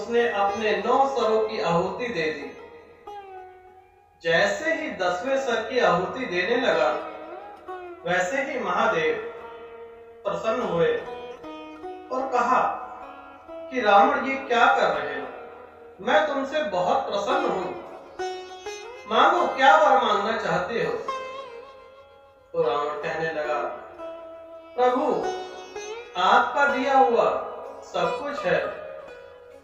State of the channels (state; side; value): identical; both; correlation 1.00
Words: अपने 9 सरों की आहुति दे दी। जैसे ही 10वें सर की आहुति देने लगा, वैसे ही महादेव प्रसन्न हुए और कहा कि रावण, ये क्या कर रहे हो? मैं तुमसे बहुत प्रसन्न हूं, मांगो, क्या वर मांगना चाहते हो? तो रावण कहने लगा, प्रभु, आपका दिया हुआ सब कुछ है,